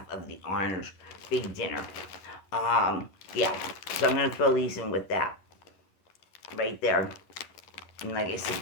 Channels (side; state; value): right; late; 11 ms